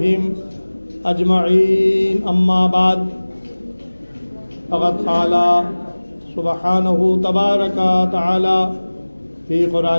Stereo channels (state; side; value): inverted; both; correlation -1.00